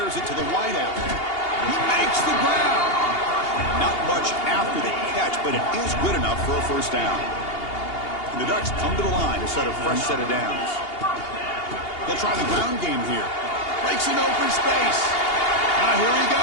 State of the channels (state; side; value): late; right; 2.8 ms